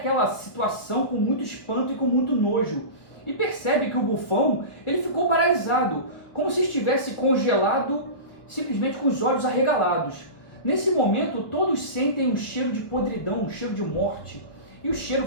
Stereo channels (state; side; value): late; right; 1.4 ms